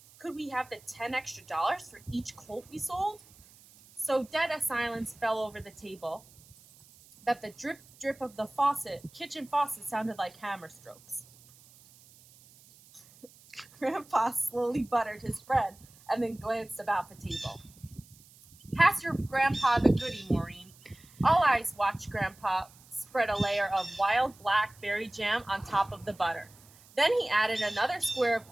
Could we have the $10 extra for each colt we sold? So dead a silence fell over the table that the drip drip of the kitchen faucet sounded like hammer strokes. Grandpa slowly buttered his bread and then glanced about the table. Pass your grandpa the goody, Maureen. All eyes watched Grandpa spread a layer of wild blackberry jam on top of the butter. Then he added another square of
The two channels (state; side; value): noise; right; hiss, 25 dB below the sound